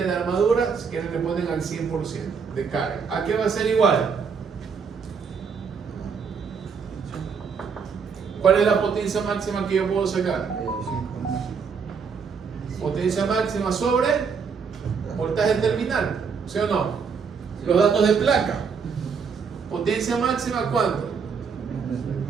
de armadura, si quieren le ponen al 100% de carga. ¿A qué va a ser igual? ¿Cuál es la potencia máxima que yo puedo sacar? Potencia máxima sobre voltaje terminal, ¿sí o no? Los datos de placa. Potencia máxima, ¿cuánto?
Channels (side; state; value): left; quieter; 5.9 dB